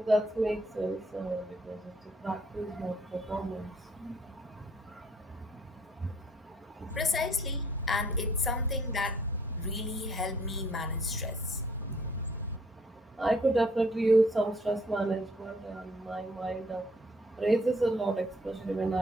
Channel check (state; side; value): normal; both; correlation 0.63